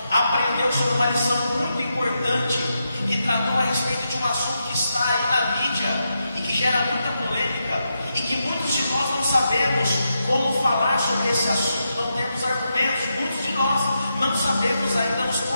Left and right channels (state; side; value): inverted; both; correlation -0.85